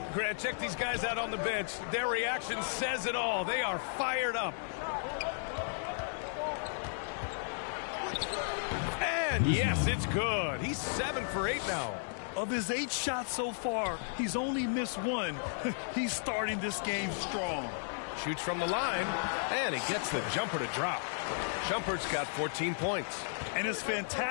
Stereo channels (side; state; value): right; silent; digital silence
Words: Grant, check these guys out on the bench. Their reaction says it all. They are fired up. And yes, it's good. He's 7 for 8 now. Of his 8 shots so far, he's only missed 1. He's starting this game strong. Shoots from the line, and he gets the jumper to drop. Shumpert's got 14 points. And his